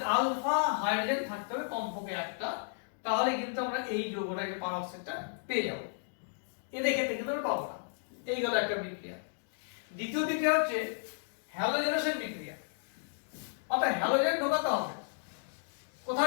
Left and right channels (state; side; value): silent; right; digital silence